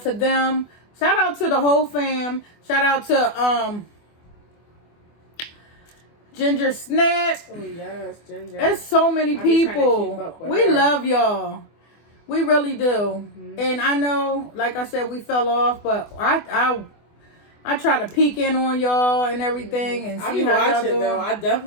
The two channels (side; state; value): right; late; 24 ms